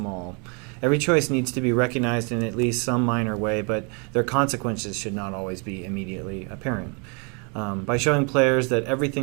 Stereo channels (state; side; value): quieter; left; 35.0 dB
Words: Every choice needs to be recognized in at least some minor way, but their consequences should not always be immediately apparent. By showing players that